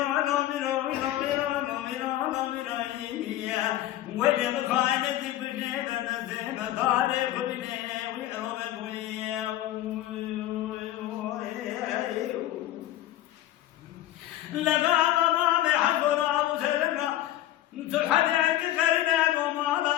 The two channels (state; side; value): quieter; right; 13.8 dB